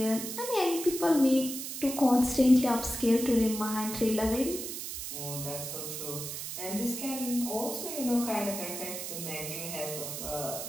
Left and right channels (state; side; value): noise; right; hiss, 6 dB below the sound